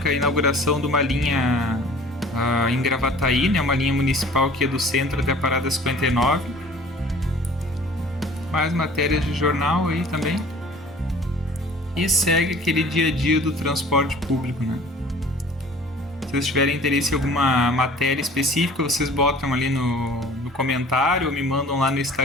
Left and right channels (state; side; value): normal; both; correlation 0.48